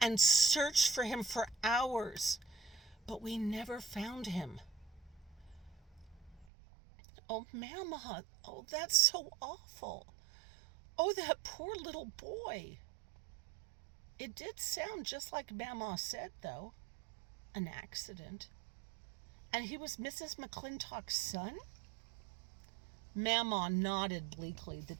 and searched for him for hours, but we never found him. Oh, Mama, oh, that's so awful. Oh, that poor little boy. It did sound just like Mama said, though. An accident. And he was Mrs. McClintock's son? Mama nodded bleakly, the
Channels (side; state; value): left; drops out; at 6.5 s